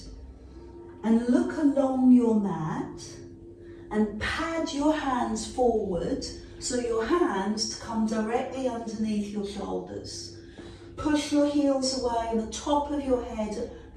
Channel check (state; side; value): identical; both; correlation 1.00